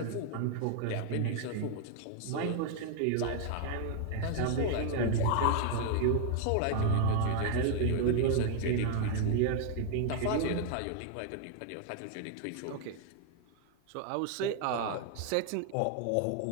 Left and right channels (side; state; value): both; different; correlation 0.00